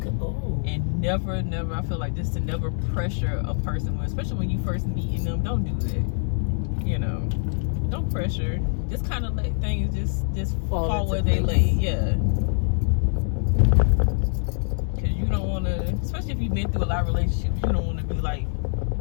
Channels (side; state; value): right; silent; 62 dB below the other